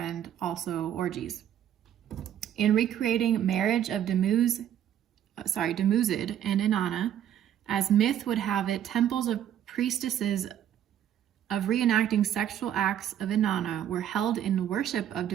also orgies. In recreating marriage of Dumuzi and Inanna, as myth would have it, temples of priestesses of reenacting sexual acts of Inanna were held in worship of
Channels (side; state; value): left; quieter; 10.4 dB